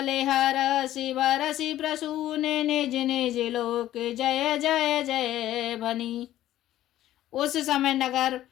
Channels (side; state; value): right; quieter; 13.5 dB